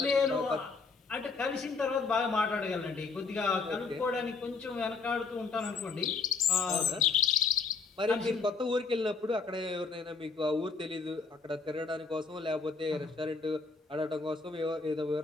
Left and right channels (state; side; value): quieter; right; 4.6 dB